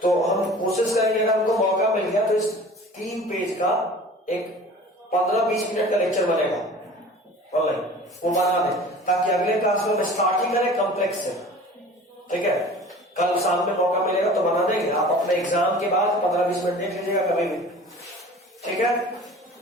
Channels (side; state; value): both; normal; correlation 0.42